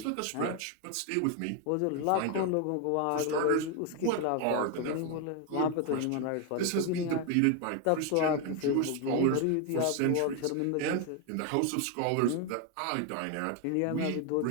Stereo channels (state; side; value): different; both; correlation 0.01